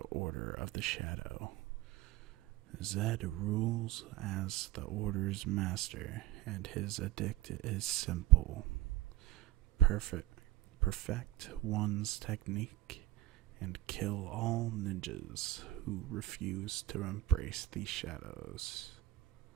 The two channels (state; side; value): quieter; left; 15.2 dB